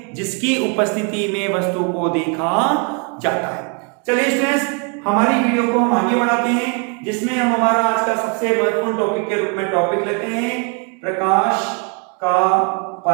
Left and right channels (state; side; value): quieter; left; 35.4 dB